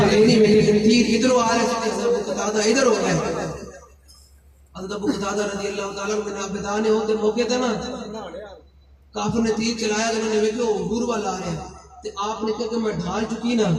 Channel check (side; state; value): both; identical; correlation 1.00